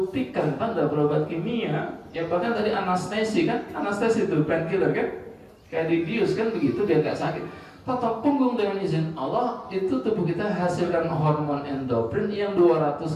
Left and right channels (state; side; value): identical; both; correlation 1.00